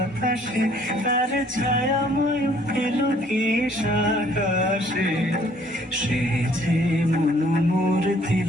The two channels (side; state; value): both; normal; correlation 0.60